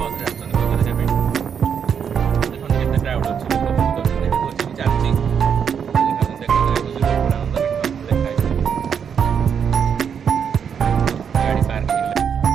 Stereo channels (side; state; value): left; quieter; 7.3 dB